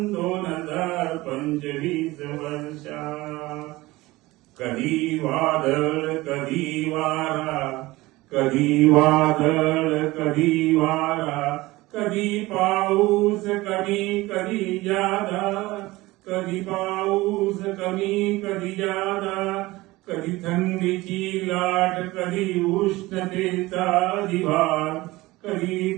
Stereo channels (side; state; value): left; quieter; 19.8 dB